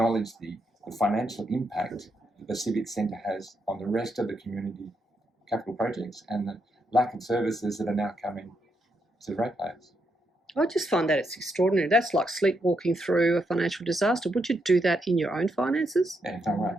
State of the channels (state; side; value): normal; both; correlation 0.80